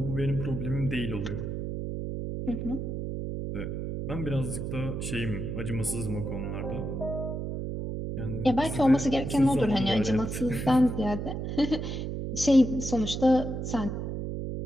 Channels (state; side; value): noise; right; hum, 4 dB below the sound